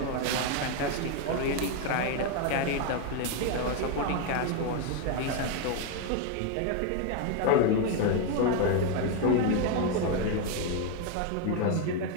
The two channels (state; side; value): different; both; correlation 0.01